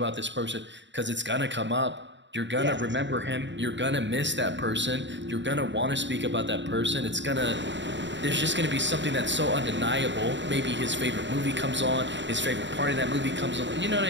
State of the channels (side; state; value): left; late; 0.53 ms